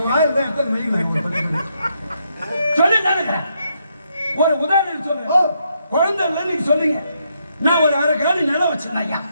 ஒரு உதாரணம் சொல்றேன். குழந்தை நீங்க சொல்றீங்க. நான் ஒரு அரை காலி நிலம் வச்சிருந்தேன் ஐயா.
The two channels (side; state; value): both; inverted; correlation -0.77